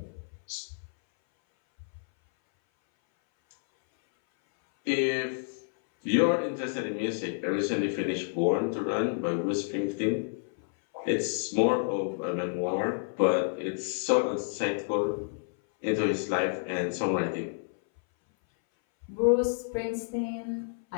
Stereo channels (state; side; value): silent; right; 58 dB below the other